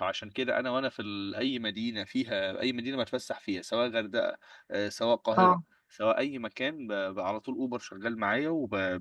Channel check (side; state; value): both; identical; correlation 1.00